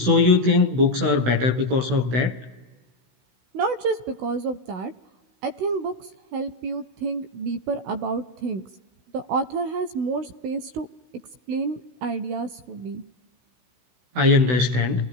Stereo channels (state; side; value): late; left; 16 ms